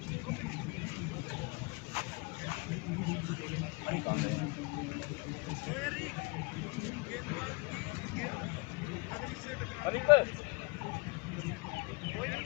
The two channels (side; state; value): right; quieter; 27.9 dB